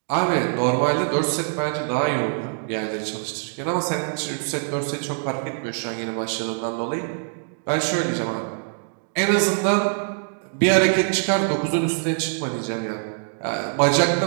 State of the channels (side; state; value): left; silent; digital silence